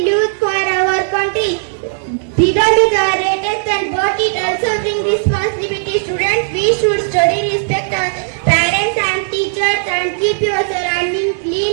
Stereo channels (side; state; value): left; silent; digital silence